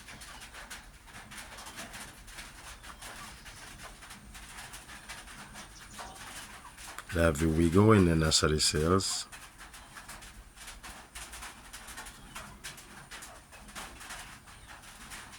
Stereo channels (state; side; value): identical; both; correlation 1.00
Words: Lavy wiggle in the nursery cells.